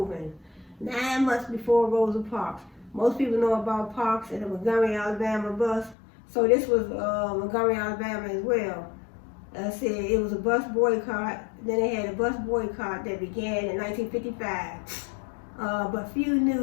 9 months before Rosa Parks. Most people know about Parks and the Montgomery, Alabama bus. So this was Montgomery, Alabama as well. said it was a bus boycott. Then they had a bus boycott that began in 1955. But few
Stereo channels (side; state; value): right; drops out; at 6.0 s